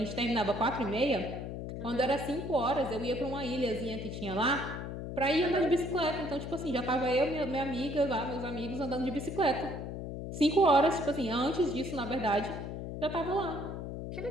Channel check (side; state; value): left; noise; hum, 6 dB below the sound